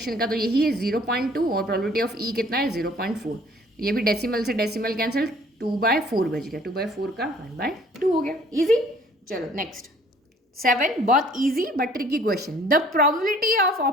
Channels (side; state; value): both; normal; correlation 0.56